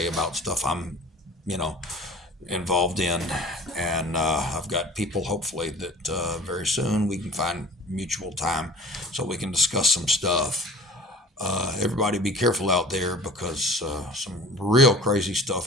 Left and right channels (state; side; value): normal; both; correlation 0.44